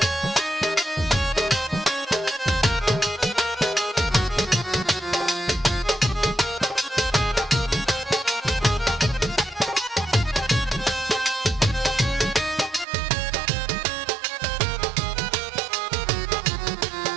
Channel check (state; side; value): drops out; left; at 12.9 s